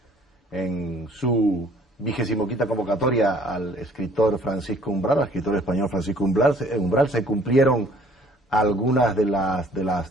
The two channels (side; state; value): both; normal; correlation 0.56